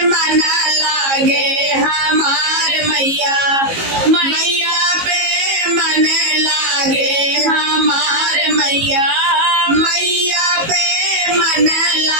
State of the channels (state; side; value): late; left; 18 ms